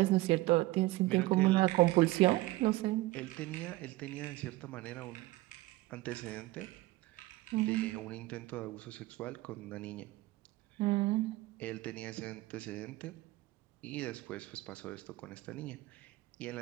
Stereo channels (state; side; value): quieter; left; 19.2 dB